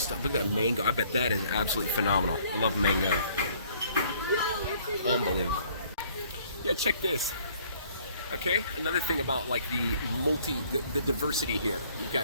Look at that mango. I bet that is absolutely phenomenal. I love mango. Unbelievable. Yeah, check this. Okay, another thing about like the diversity here. You've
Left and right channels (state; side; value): inverted; both; correlation -0.60